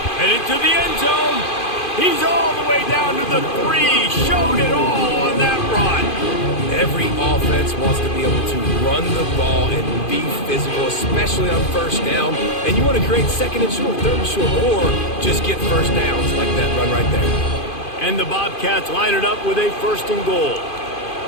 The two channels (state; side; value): late; right; 2.5 ms